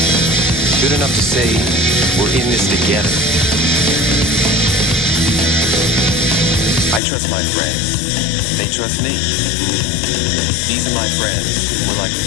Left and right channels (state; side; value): drops out; right; at 7.0 s